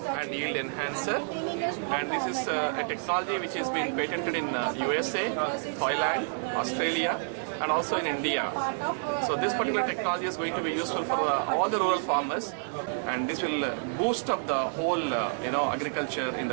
yield enhancer. And this is a technology which has been patented in USA, Thailand, Australia, and also in India. So this particular technology is going to be useful for all the rural farmers, and this will boost up the whole agriculture in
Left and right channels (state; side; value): silent; left; 59 dB below the other